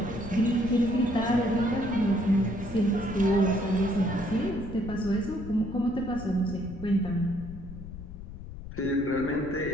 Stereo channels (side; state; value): left; noise; rumble, 12 dB below the sound